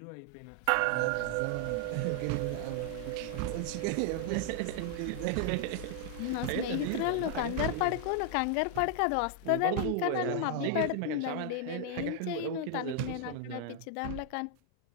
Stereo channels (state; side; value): different; both; correlation 0.00